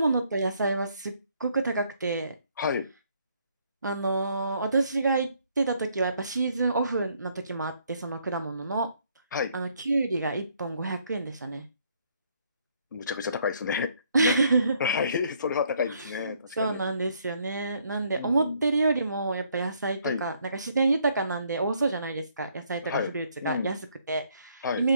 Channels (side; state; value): both; inverted; correlation -0.68